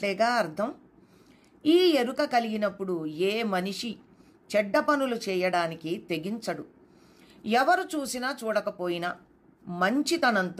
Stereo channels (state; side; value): identical; both; correlation 1.00